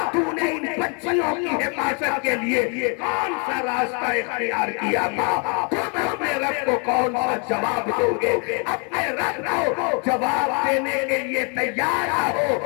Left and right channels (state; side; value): quieter; right; 36.6 dB